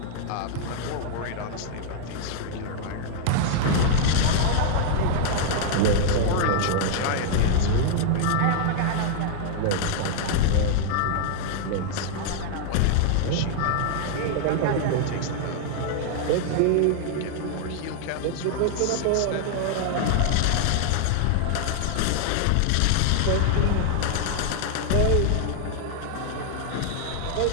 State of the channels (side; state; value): both; different; correlation 0.00